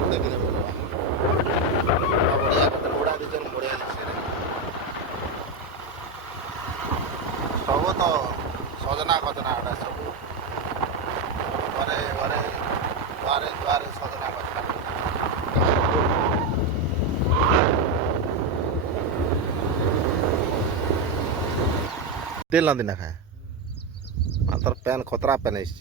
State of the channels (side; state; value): left; quieter; 3.0 dB